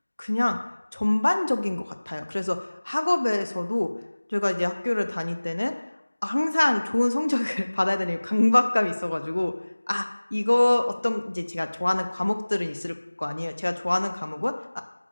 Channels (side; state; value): both; inverted; correlation -1.00